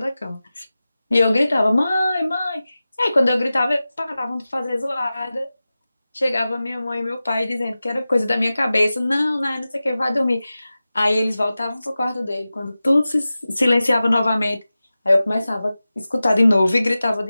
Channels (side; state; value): both; inverted; correlation -0.95